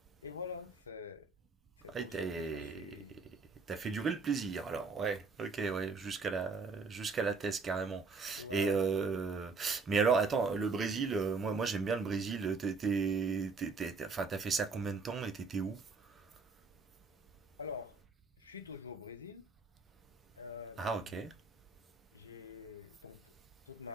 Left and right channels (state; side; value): quieter; left; 4.4 dB